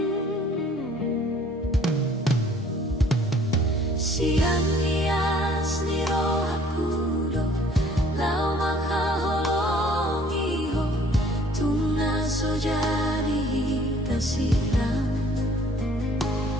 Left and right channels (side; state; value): both; normal; correlation 0.56